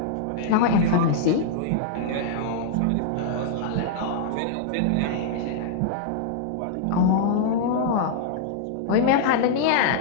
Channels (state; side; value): different; both; correlation -0.01